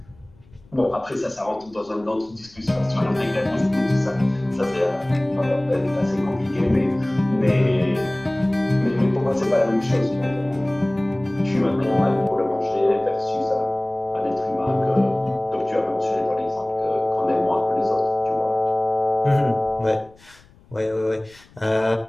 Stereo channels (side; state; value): left; noise; rumble, 27 dB below the sound